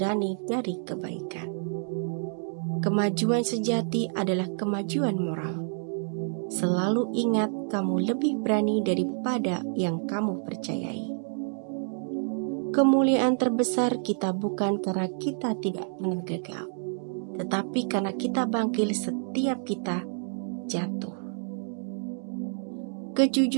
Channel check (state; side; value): silent; left; digital silence